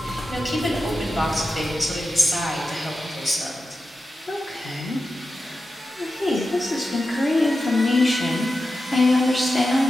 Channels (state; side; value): normal; both; correlation 0.91